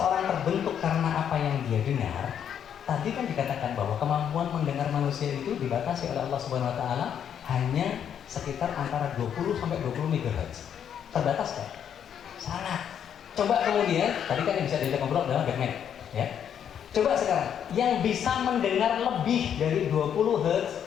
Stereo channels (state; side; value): quieter; right; 8.8 dB